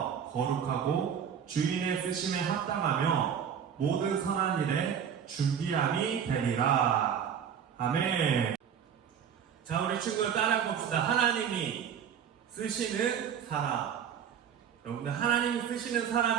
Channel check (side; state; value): left; quieter; 8.1 dB